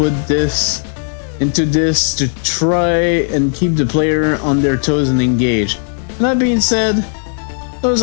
this into this to try and keep the player on their toes and engaged. And that being said, those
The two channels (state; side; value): silent; right; 63 dB below the other